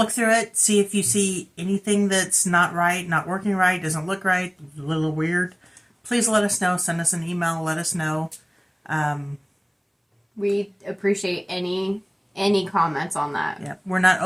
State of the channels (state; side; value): identical; both; correlation 1.00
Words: through it, see if you see anything that's not right, not working right, doesn't look right, a little weird. Please let us know. Send us an email, let us know. We appreciate any comments on that. Yeah, we're not